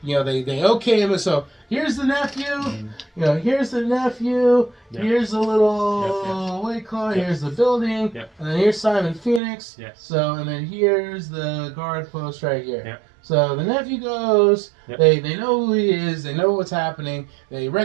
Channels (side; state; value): left; drops out; at 9.4 s